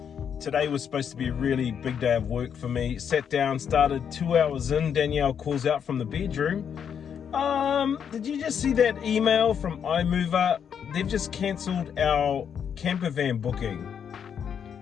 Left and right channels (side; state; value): right; quieter; 7.8 dB